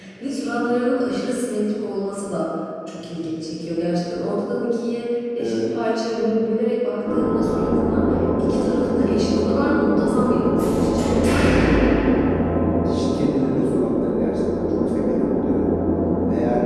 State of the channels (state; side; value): identical; both; correlation 1.00